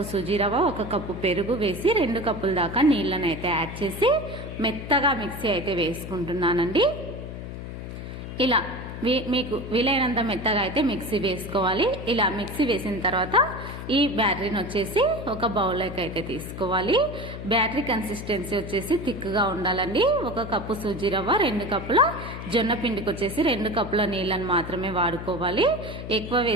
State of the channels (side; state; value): left; noise; hum, 9 dB below the sound